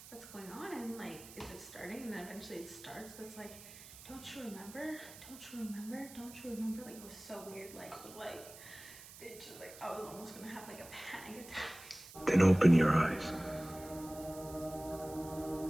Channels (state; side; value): noise; right; hiss, 16 dB below the sound